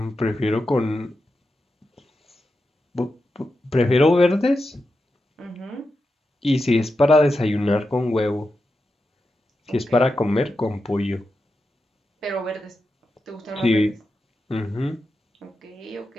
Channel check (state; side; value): normal; both; correlation 0.89